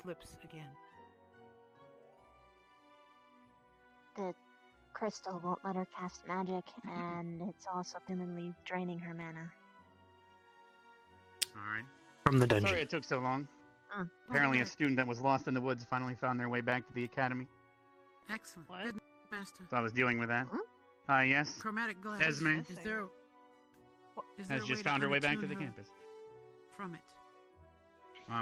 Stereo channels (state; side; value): identical; both; correlation 1.00